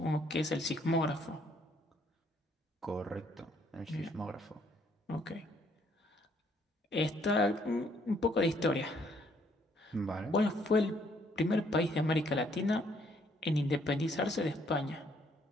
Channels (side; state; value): both; normal; correlation 0.67